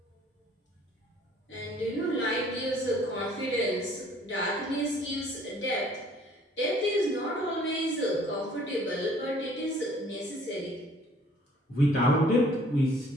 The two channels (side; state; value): both; normal; correlation 0.56